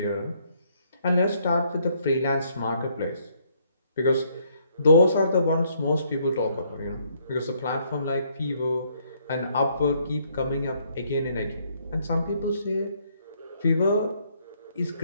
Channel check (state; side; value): inverted; both; correlation -0.69